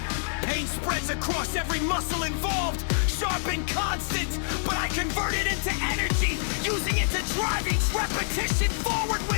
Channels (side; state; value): right; silent; digital silence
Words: Pain spreads across every muscle involved, sharp and constant, but I convert it into energy, using it to drive each repetition forward